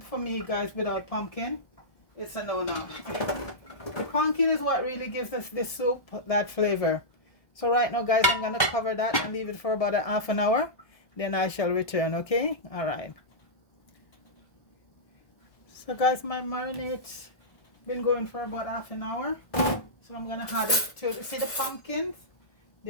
for me, guys, without pumpkin, it's a no-no. The pumpkin is what really gives us this soup that flavor. So right now, guys, I'm gonna cover that and leave it for about a half an hour. Then I shall return. Okay, all right. So guys, my marinade's been going for about half an hour. So I'm gonna add it to, see the pumpkins?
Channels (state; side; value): late; right; 1.2 ms